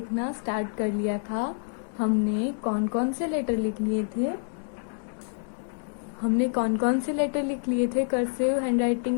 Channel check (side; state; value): right; silent; 60 dB below the other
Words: स्टार्ट कर लिया था। हमने कौन कौन से लेटर लिख लिए थे कर्सिव